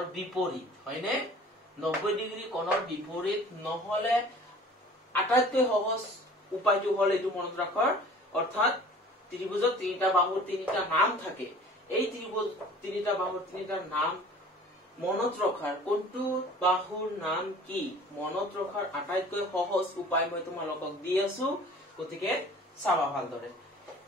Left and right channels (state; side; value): normal; both; correlation 0.47